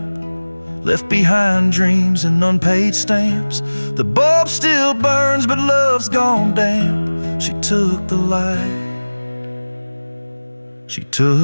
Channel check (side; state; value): both; inverted; correlation -1.00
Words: left behind dreams and unpaid stamps. The bulb still burns but love's gone damp. She took the light, she